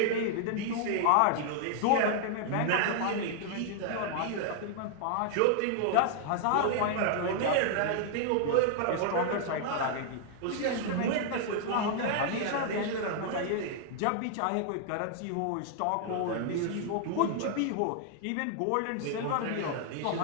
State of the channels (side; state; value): both; different; correlation 0.00